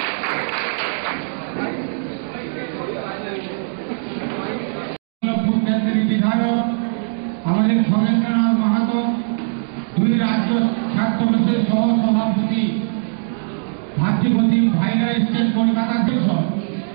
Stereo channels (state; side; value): silent; left; digital silence